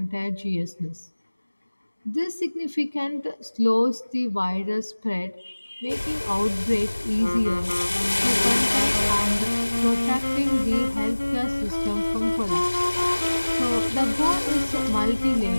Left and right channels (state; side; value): inverted; both; correlation -1.00